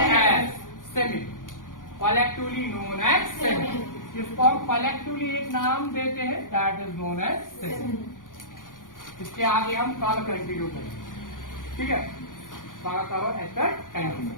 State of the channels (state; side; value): late; right; 0.89 ms